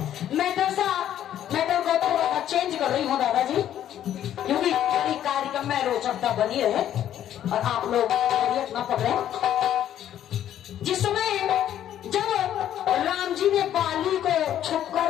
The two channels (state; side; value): quieter; right; 11.1 dB